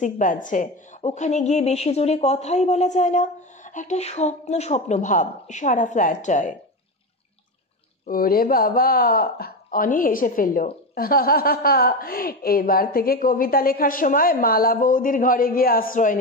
বাজছে, ওখানে গিয়ে বেশি জোরে কথাই বলা যায় না, একটা স্বপ্ন স্বপ্ন ভাব সারা ফ্ল্যাটটায়। ওরে বাবা, অনি হেসে ফেলল। এবার থেকে কবিতা লেখার সময় মালা বৌদির ঘরে গিয়ে আশ্রয়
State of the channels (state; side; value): normal; both; correlation 0.18